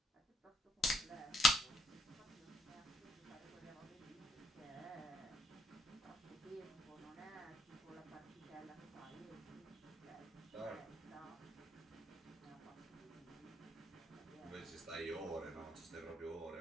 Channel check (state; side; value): normal; both; correlation 0.72